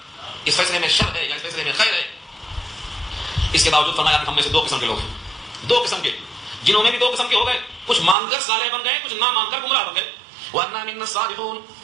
اس فیصلے میں شر ہے یا اس فیصلے میں خیر ہے. اس کے باوجود فرمایا کہ ہم میں سے دو قسم کے لوگ ہیں، دو قسم کے، جنہوں میں بھی دو قسم کے ہو گئے. کچھ مان کر صالح بن گئے، کچھ نہ مان کر گمراہ بن گئے. وَأَنَّا مِنَّا الصَّالِحُونَ،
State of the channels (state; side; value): drops out; left; at 8.2 s